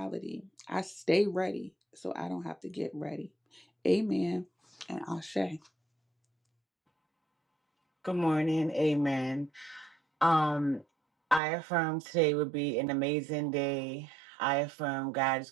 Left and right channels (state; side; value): drops out; left; at 11.4 s